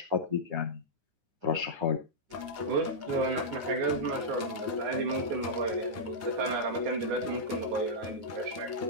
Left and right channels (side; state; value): left; late; 9.7 ms